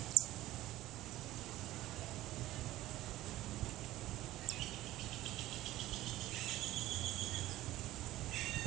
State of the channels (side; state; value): left; quieter; 15.9 dB